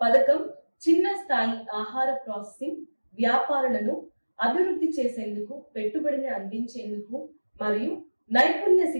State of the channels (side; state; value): both; inverted; correlation -1.00